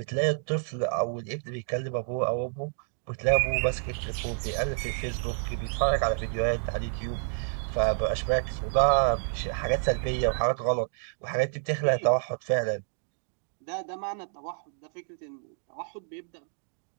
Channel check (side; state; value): left; silent; digital silence